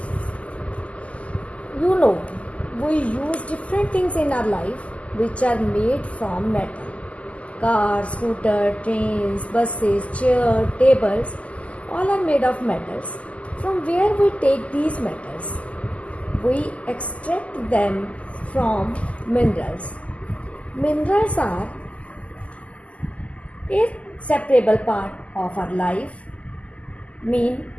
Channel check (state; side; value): late; right; 0.066 ms